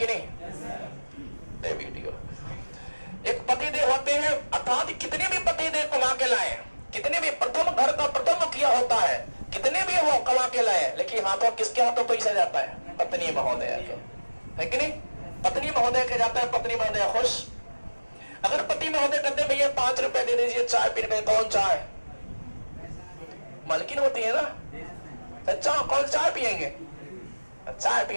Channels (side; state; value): both; inverted; correlation -1.00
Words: नहीं? वीडियो एक पतिदेव होते हैं, अर्थात कितने भी पतिदेव कमा के लाए, कितने भी प्रथम घर का प्रथम मुखिया होता है, कितने भी वो कमा के लाए, लेकिन हाथों किसके हाथों पैसा जाता है? पत्नी महोदय के, है कि नहीं? पत्नी महोदय के जाता है, पत्नी महोदय खुश। अगर पति महोदय कहते हैं भैया 5 रुपए दे दीजिए चाय पीने में, कौन चाय? मालकिन होती है ना, अच्छा कौन चाय पियेंगे? चाय